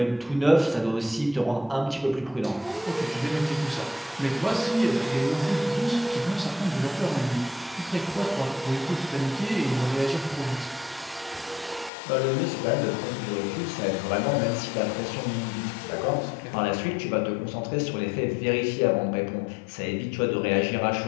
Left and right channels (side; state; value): right; drops out; at 11.9 s